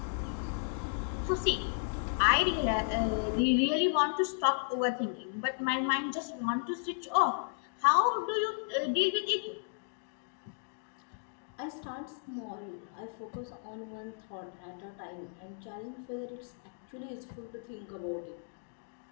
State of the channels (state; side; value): silent; right; digital silence